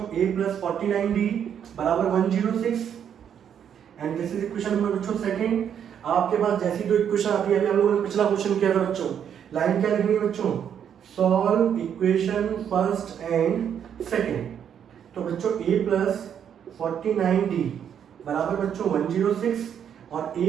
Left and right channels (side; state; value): left; quieter; 8.6 dB